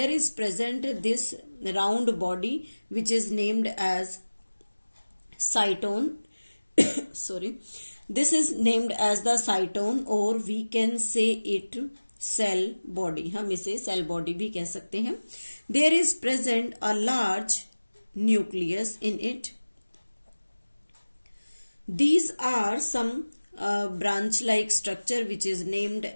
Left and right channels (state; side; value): inverted; both; correlation -1.00